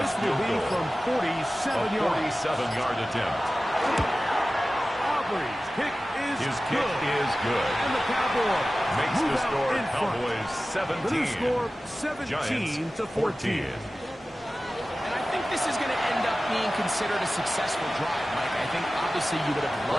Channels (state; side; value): normal; both; correlation 0.96